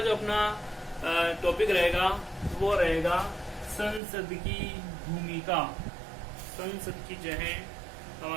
जो अपना टॉपिक रहेगा वो रहेगा संसद की भूमिका। संसद की जो है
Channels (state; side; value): drops out; left; at 4.0 s